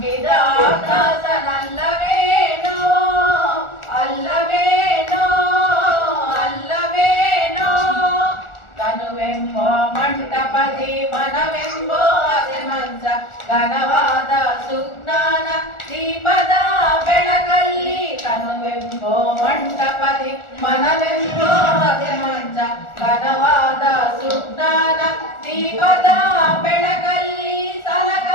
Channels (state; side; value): late; right; 1.4 ms